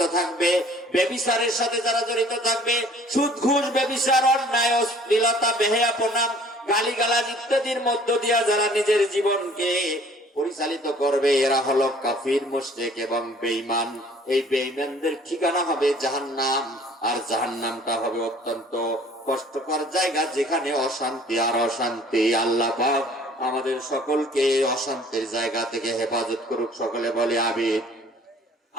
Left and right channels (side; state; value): both; normal; correlation 0.53